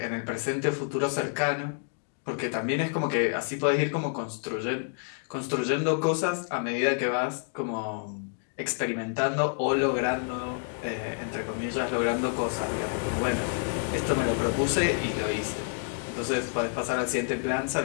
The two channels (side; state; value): right; silent; 59 dB below the other